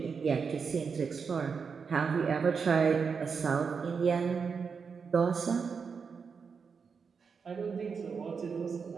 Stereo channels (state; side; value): quieter; left; 5.7 dB